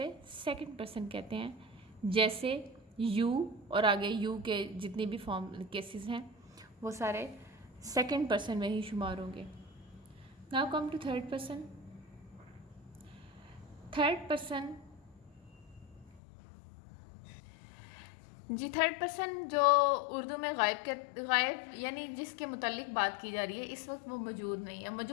सेकंड पर्सन कहते हैं। जैसे यू और आगे यू के जितनी भी फॉर्म केसेस हैं वो सारे सेकंड पर्सन में ही शुमार होंगे। Now come to third person. Third person जी, थर्ड पर्सन जो उर्दू में गायब यानी जिसके मुताल्लिक बात की जा रही है, इस वक्त वो मौजूद नहीं है।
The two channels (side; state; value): right; drops out; at 16.2 s